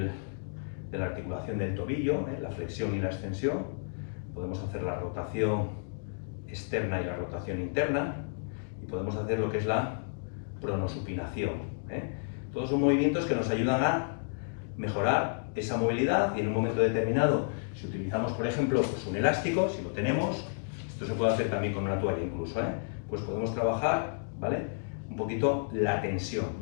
de la articulación del tobillo, la flexión y la extensión. Podemos hacer la rotación externa y la rotación interna y podemos hacer lo que es la pronosupinación. Todos son movimientos que nos ayudan a mejorar esa movilidad y en un momento determinado, si utilizamos por ejemplo pues un elástico, si lo tenemos, esto se puede hacer también con una toalla incluso, pues podemos trabajar, ¿vale? Un poquito la tensión,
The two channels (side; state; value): right; silent; digital silence